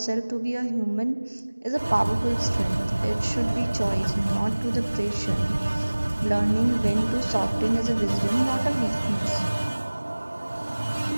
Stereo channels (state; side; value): inverted; both; correlation -1.00